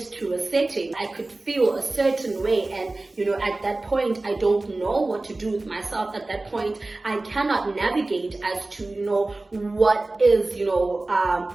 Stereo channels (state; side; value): quieter; left; 3.0 dB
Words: to a setting, I could feel a certain way, and, at that point, I don't know what to do with myself. At that point, I cannot navigate as to, what is,